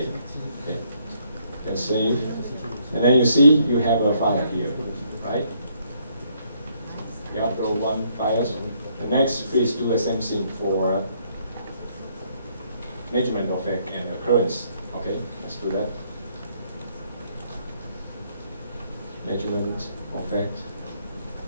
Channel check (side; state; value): both; inverted; correlation -0.70